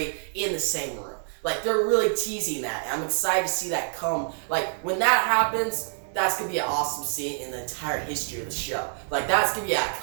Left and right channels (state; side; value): silent; left; 60 dB below the other